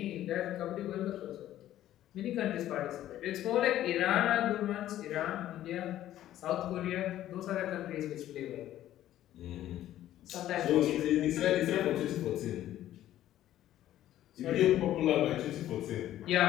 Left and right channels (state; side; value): quieter; right; 12.9 dB